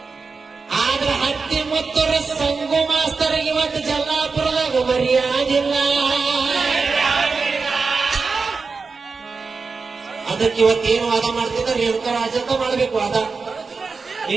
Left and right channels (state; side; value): quieter; left; 4.6 dB